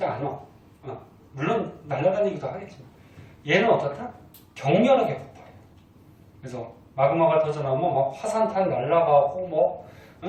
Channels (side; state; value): both; identical; correlation 1.00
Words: 않아. 물론 날아다니기도 하겠지만 얘는 어떻다? 격렬하게 폭발해요. 그래서 마그마가 터져 나오면 막 화산탄 날아가고 뭐